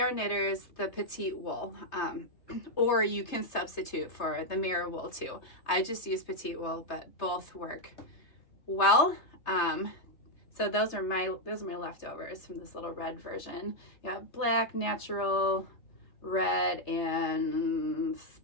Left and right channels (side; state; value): right; late; 3.3 ms